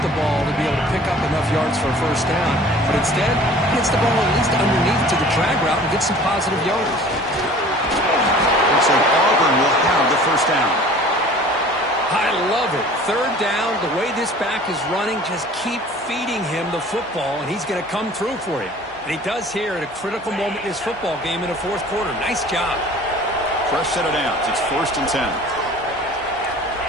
the ball to be able to pick up enough yards for a first down. But instead, he gets the ball at least underneath to the drag route and gets some positive yards. Looks like Auburn will have the first down. I love it. 3rd down, the way this back is running, just keep feeding him the football, and he's going to come through for you. And he does here at a critical moment in this football game in the 4th quarter. Nice job. Fresh set of downs. It's 1st and 10.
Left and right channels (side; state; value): both; normal; correlation 0.47